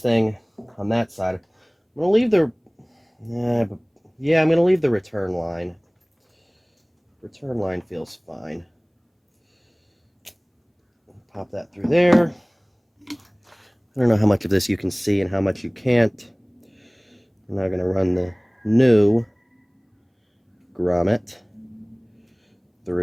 on that side. I'm going to leave the... Yeah, I'm going to leave the return line. Return line feels fine. Pop that through there. I don't know how much of this you can see and how much you can't. I'm now going to run the new grommet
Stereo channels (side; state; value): both; identical; correlation 1.00